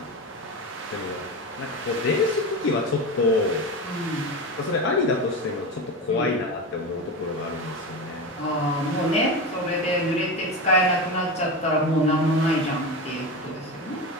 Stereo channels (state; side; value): normal; both; correlation 0.22